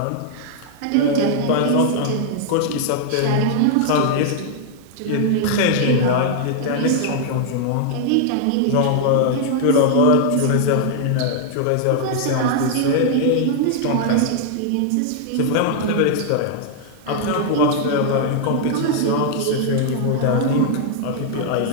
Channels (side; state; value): both; different; correlation 0.00